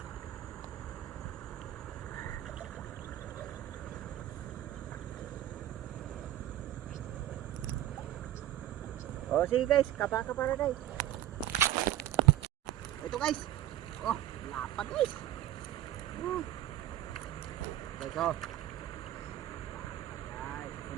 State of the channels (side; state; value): left; quieter; 13.2 dB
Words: O sige guys, kapa na guys. Ito guys. Oh, lapad guys. Guys, oh. Guys,